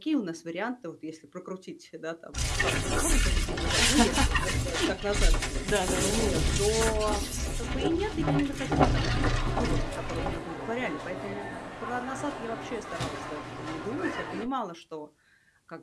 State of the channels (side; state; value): both; identical; correlation 1.00